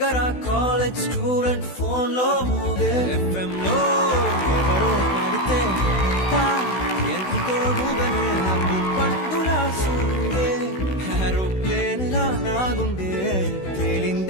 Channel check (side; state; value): right; late; 16 ms